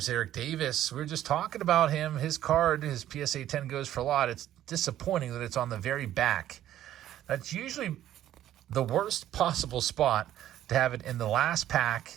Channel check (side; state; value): left; quieter; 12.3 dB